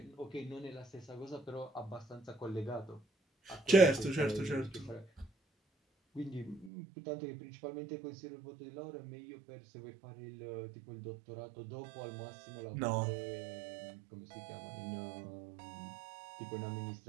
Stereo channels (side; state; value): left; drops out; at 6.7 s